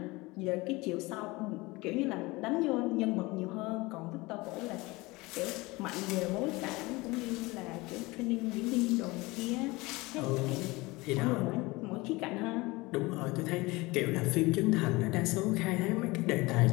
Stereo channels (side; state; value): right; quieter; 22.5 dB